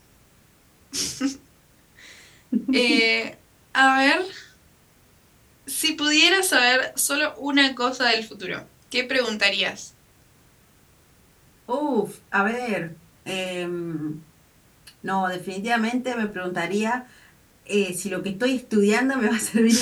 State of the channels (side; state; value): both; identical; correlation 1.00